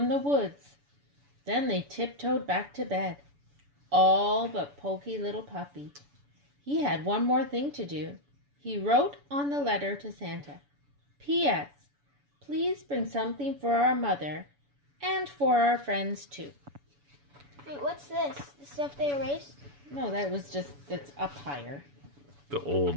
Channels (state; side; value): late; left; 7.0 ms